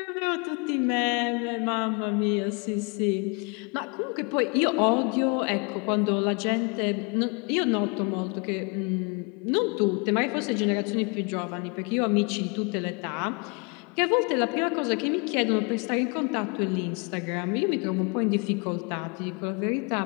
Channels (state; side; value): quieter; right; 32.8 dB